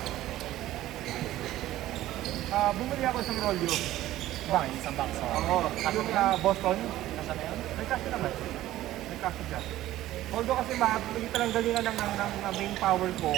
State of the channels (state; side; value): quieter; left; 14.7 dB